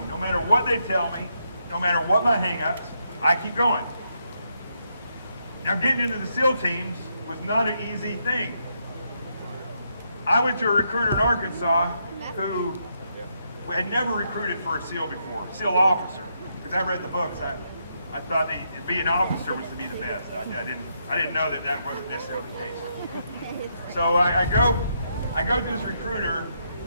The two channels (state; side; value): inverted; both; correlation -0.78